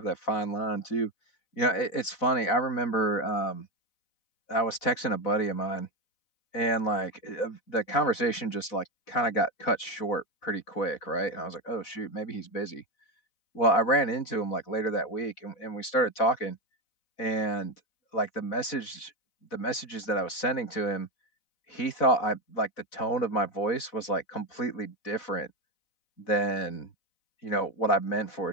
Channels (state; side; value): late; right; 4.0 ms